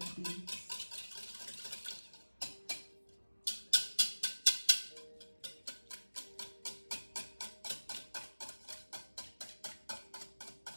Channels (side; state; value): both; inverted; correlation -1.00